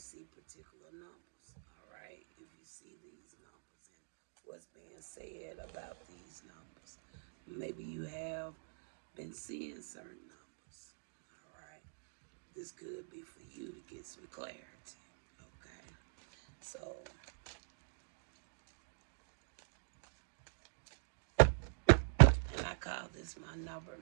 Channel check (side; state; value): left; silent; digital silence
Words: particular numbers. All right, if you see these numbers and what's being said about these numbers, maybe you have been seeing certain numbers. All right. This could be for you to get some clarity. Okay. So, and I call this my number